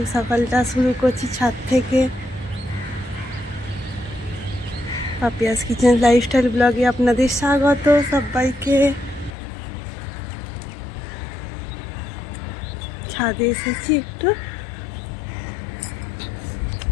সকালটা শুরু করছি ছাদ থেকে। পাপিয়াস কিচেন লাইফস্টাইল ব্লগে আপনাদের স্বাগত সবাইকে। ছাদে এসেছি একটু।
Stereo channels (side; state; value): right; drops out; at 9.3 s